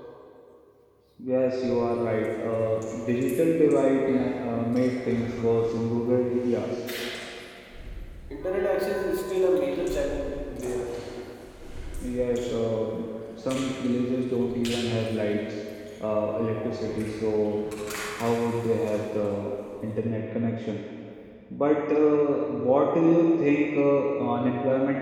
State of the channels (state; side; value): identical; both; correlation 1.00